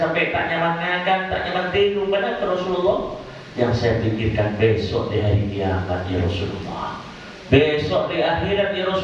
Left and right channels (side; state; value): both; identical; correlation 1.00